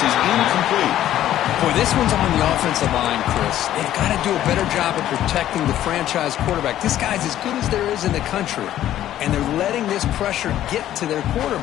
is incomplete. Boy, this one's on the offensive line, Chris. They've got to do a better job of protecting the franchise quarterback. This guy's as good as there is in the country, and they're letting this pressure get to their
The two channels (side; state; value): right; quieter; 12.4 dB